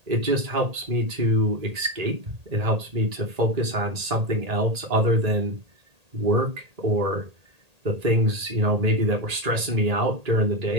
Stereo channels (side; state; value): left; late; 1.8 ms